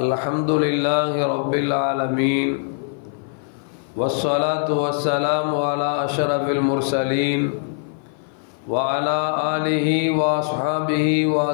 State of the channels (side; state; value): right; silent; 58 dB below the other